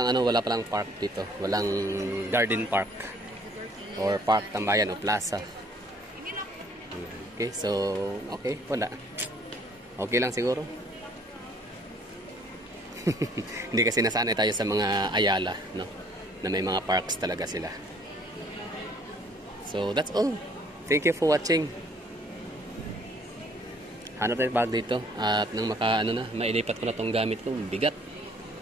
park dito. Walang garden park. Or park tambayan o plaza. Okay, so, okay, wala. Okay lang siguro. Hindi kasi nasanay tayo sa mga Ayala, no? Na may mga parks talaga sila. So, that's all. Thank you for watching. Hanap tayo bag dito. At nang mailipat ko na tong gamit ko, bigat.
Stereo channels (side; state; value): both; normal; correlation 0.60